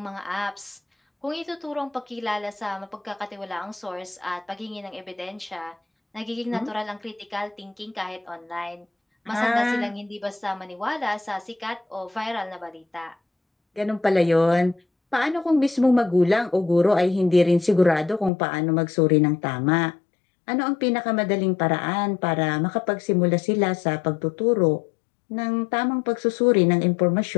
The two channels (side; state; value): right; drops out; at 18.3 s